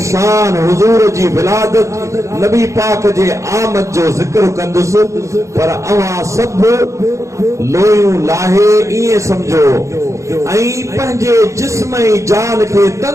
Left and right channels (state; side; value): late; left; 0.15 ms